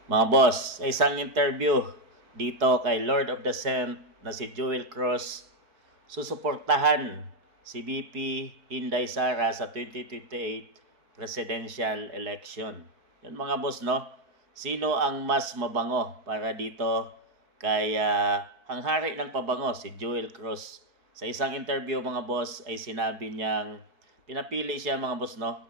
Mga boss, sa isang interview dito kay Lord of the Scent na si Joel Cruz, susuportahan si VP Inday Sara sa 2028 presidential election. Yan mga boss, no? Sino ang mas mabango para dito kay hanghari ng pabango, si Joel Cruz? Sa isang interview mga boss ay sinabi niyang pinapili siya mga boss,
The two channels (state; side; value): late; left; 4.7 ms